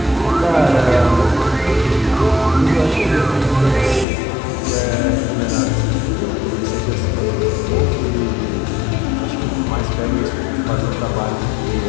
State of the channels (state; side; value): drops out; right; at 4.0 s